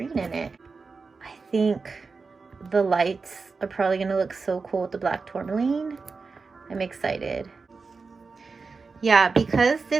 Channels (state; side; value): quieter; left; 4.5 dB